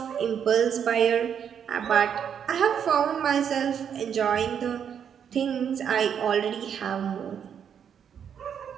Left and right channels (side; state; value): left; quieter; 8.1 dB